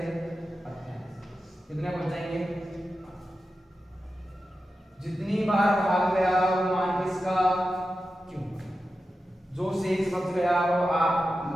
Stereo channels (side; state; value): both; normal; correlation 0.91